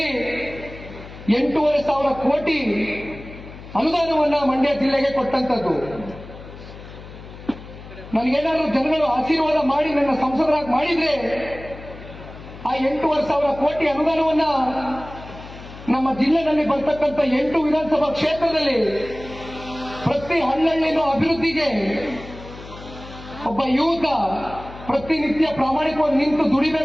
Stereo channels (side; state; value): left; noise; hum, 15 dB below the sound